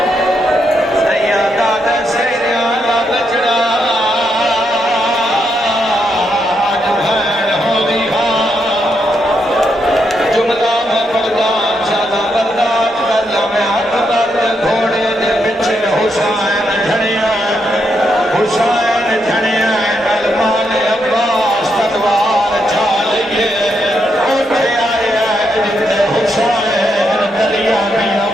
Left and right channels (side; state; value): both; normal; correlation 0.80